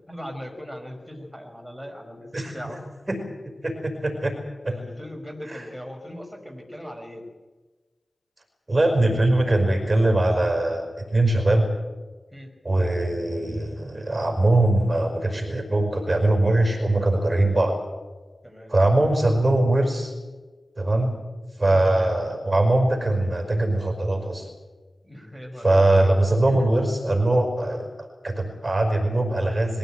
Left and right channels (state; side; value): normal; both; correlation 0.96